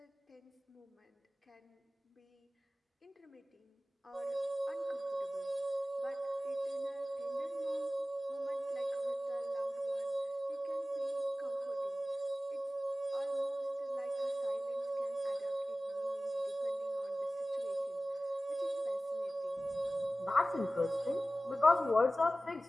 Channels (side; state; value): both; normal; correlation 0.96